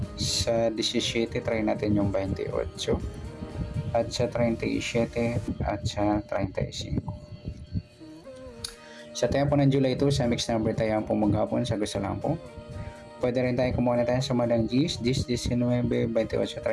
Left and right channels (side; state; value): both; identical; correlation 1.00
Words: Sa 17 try natin yung 28, at sa 37 at sa 35. Sa tayo po ng July 2 sa mix number tayo po maghapon sa gusto lang po. Pwede rin tayo kumuha na tayo sumadang 10, 19, 28,